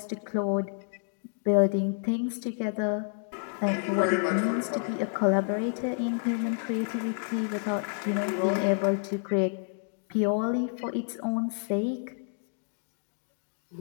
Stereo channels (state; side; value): silent; right; 58 dB below the other